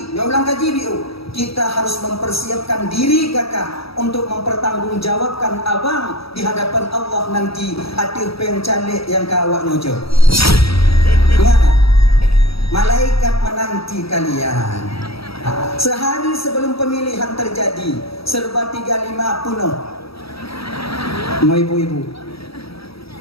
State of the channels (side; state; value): right; late; 0.76 ms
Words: dia ulang kaji biu, kita harus mempersiapkan diri kakak untuk mempertanggungjawabkan abang di hadapan Allah nanti atir pencalek yang kawak nyojo. Ingat, malaikat menanti kalian. Sehari sebelum pemilihan terjadi, serba 35 penuh. Mau ibu-ibu